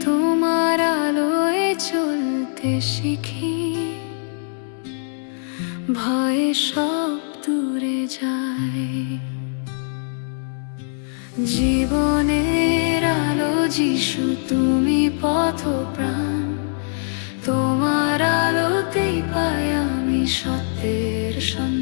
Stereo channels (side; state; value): right; silent; digital silence